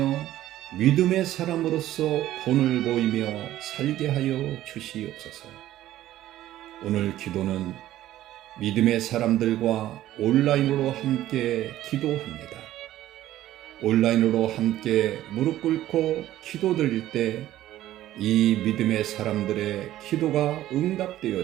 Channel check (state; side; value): quieter; left; 13.9 dB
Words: 믿음의 사람으로서 본을 보이며 살게 하여 주시옵소서. 오늘 기도는 믿음의 사람들과 온라인으로 함께 기도합니다. 온라인으로 함께 무릎 꿇고 기도 드릴 때 이 믿음의 사람들의 기도가